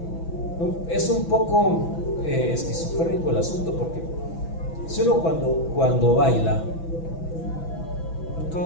Es un poco esquizofrénico el asunto, porque si uno cuando baila,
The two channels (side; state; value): right; late; 6.0 ms